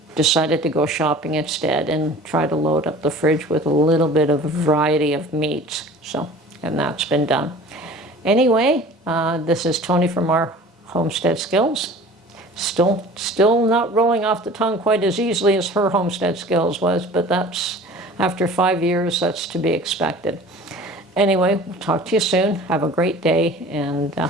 Decided to go shopping instead and try to load up the fridge with a little bit of a variety of meats. So, and that's been done. Anyway, this is Tony from our Homestead Skills. Still not rolling off the tongue quite as easily as her Homestead Skills was, but that's, after 5 years, that's to be expected. Anyway, we'll talk to you soon. Have a great day, and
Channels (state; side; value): normal; both; correlation 0.43